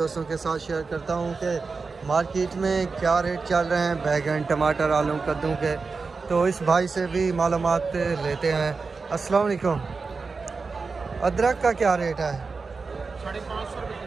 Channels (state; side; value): quieter; left; 4.5 dB